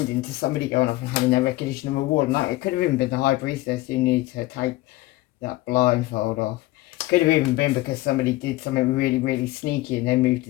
to somebody going off and having their recognition and reward. Like, it could have even been the High Priestess who needed to take that blindfold off. Could have even been because somebody did something really, really sneaky and then moved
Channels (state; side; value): quieter; right; 18.4 dB